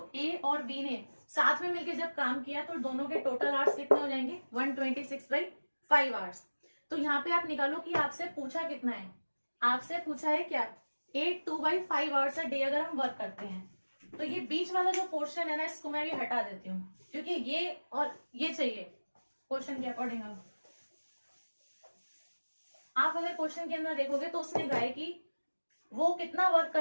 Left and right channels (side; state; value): both; inverted; correlation -1.00